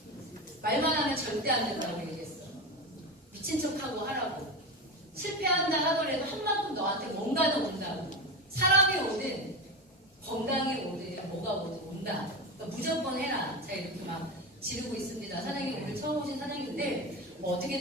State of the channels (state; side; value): normal; both; correlation 0.21